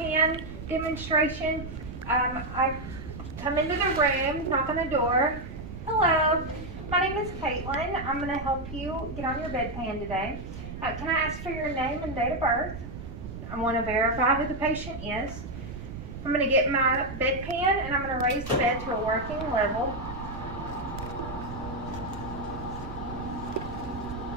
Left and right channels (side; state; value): right; noise; rumble, 10 dB below the sound